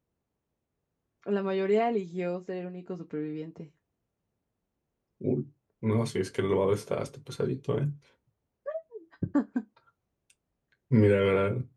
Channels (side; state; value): both; identical; correlation 1.00